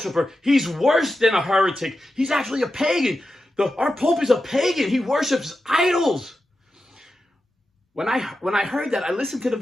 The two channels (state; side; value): normal; both; correlation 0.91